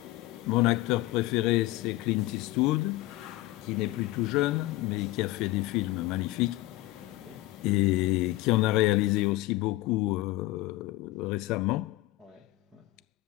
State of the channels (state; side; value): quieter; right; 18.4 dB